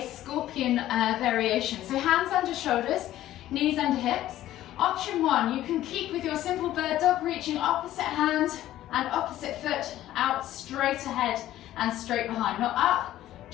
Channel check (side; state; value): right; quieter; 13.7 dB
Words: scorpion variation. So hands under shoulders, knees under hips. Option 1, you can keep with your simple bird dog, reaching opposite hand and opposite foot out straight ahead and straight behind. Not up,